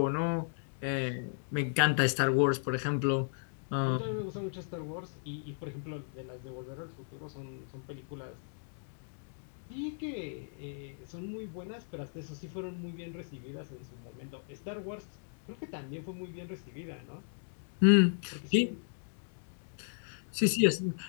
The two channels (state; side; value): silent; right; digital silence